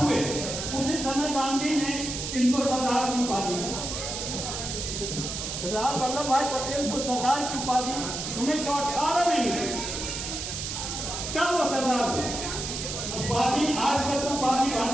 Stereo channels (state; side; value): noise; right; hiss, 5 dB below the sound